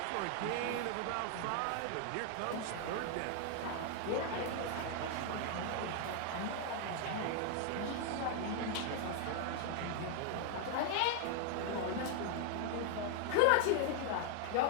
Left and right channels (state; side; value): different; both; correlation 0.00